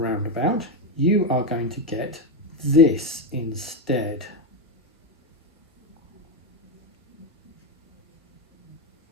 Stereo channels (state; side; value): normal; both; correlation 0.08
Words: you are going to get this instead.